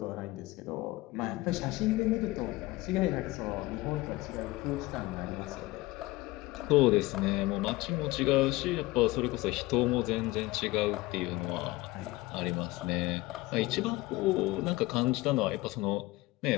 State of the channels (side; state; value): right; quieter; 19.8 dB